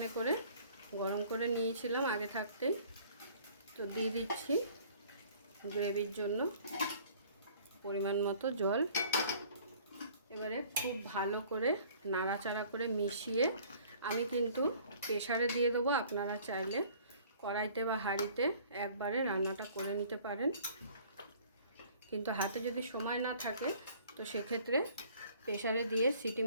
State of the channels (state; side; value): inverted; both; correlation -0.53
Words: করে গরম করে নিয়েছিলাম আগে থাকতেই। তো দিয়ে দিচ্ছি গ্রেভির জন্য পরিমাণ মতো জল। এবারে খুব ভালো করে নাড়াচাড়া করে মিশিয়ে আমি কিন্তু প্রেসারে দিয়ে দেবো। আপনারা চাইলে কড়াইতে বা হাঁড়িতে একবারে রান্নাটা করে নিতে পারেন, কিন্তু হাতে যদি সময় না থাকে তো সেক্ষেত্রে প্রেসারে দিয়ে সিটি